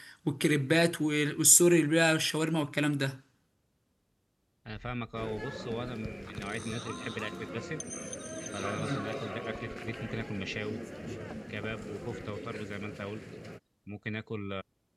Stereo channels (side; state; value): both; identical; correlation 1.00